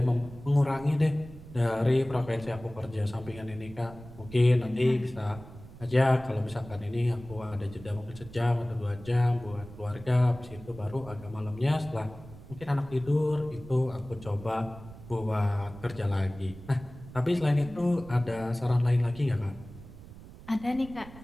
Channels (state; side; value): noise; right; rumble, 17 dB below the sound